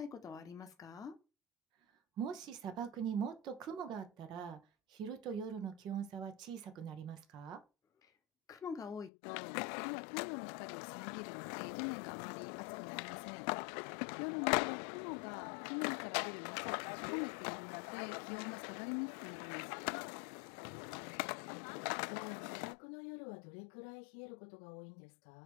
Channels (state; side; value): drops out; right; at 9.1 s